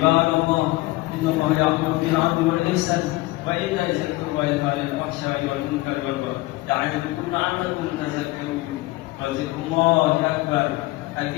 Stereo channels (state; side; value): quieter; right; 20.3 dB